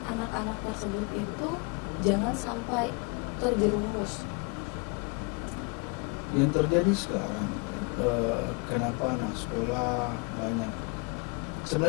anak-anak tersebut itu jangan sampai terjerumus? Yang terjadi sekarang, kenapa anak sekolah banyak,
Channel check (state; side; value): quieter; right; 32.2 dB